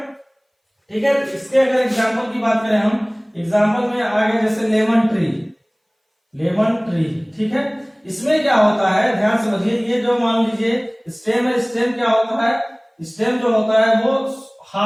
ठीक है। इसके अगर एग्जांपल की बात करें हम, एग्जांपल में आगे जैसे लेमन ट्री, ठीक है। इसमें क्या होता है, ध्यान समझिए, ये जो मान लीजिए स्टेम है, स्टेम क्या होता है? स्टेम जो होता है वो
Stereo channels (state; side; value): identical; both; correlation 1.00